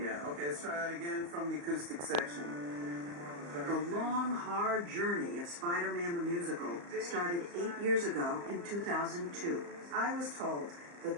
Yeah, okay, let's try that again from the acoustic section. The long, hard journey of Spider-Man the Musical started 8 years ago in 2002. I was told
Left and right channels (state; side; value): late; left; 35 ms